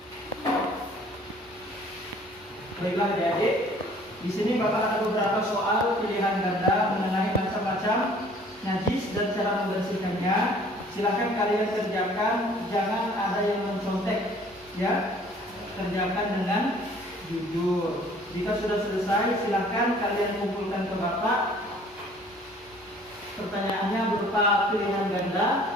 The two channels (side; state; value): both; normal; correlation 0.54